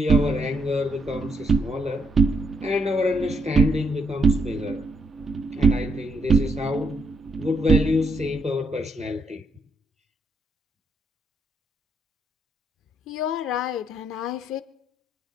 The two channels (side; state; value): both; normal; correlation 0.75